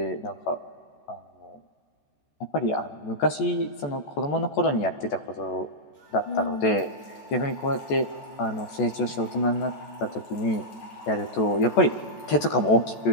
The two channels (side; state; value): right; late; 14 ms